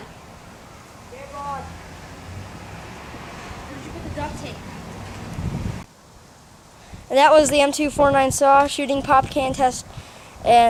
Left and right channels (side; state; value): both; identical; correlation 1.00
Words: They're gone. Where'd you put the duct tape? And that was the M249 saw shooting pop can test,